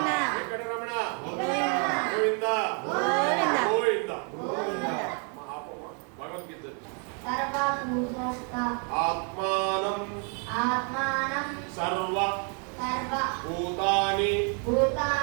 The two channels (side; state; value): left; quieter; 39.4 dB